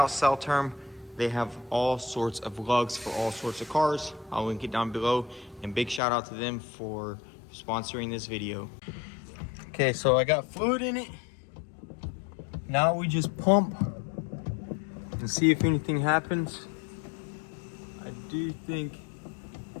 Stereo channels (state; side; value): drops out; right; at 6.0 s